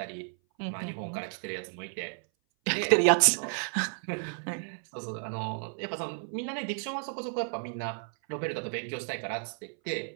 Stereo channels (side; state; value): left; silent; 56 dB below the other